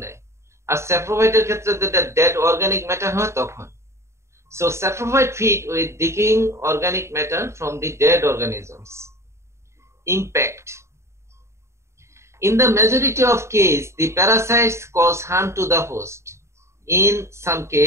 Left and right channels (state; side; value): late; left; 0.13 ms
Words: নেয়। আর স্যাপ্রোফাইটের ক্ষেত্রে যেটা ডেড অর্গানিক ম্যাটার হয় তখন। So saprophyte feed with decaying organic matter from the dead organisms. Impact. In the majority of cases, the parasites cause harm to the host. In some